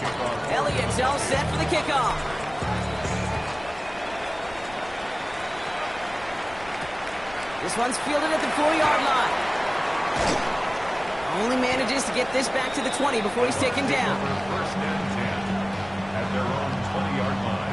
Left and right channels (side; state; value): left; noise; rumble, 20 dB below the sound